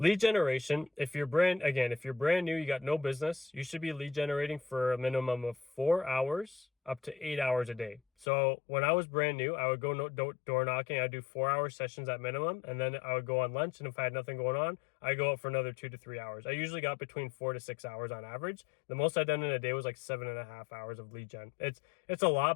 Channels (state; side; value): drops out; right; at 8.2 s